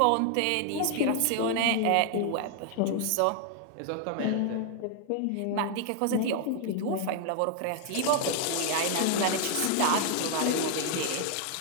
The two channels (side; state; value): both; different; correlation 0.00